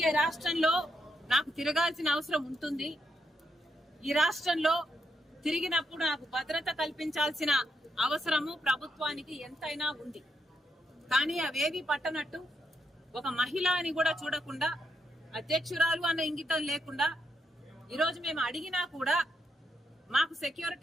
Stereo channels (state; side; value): normal; both; correlation 0.81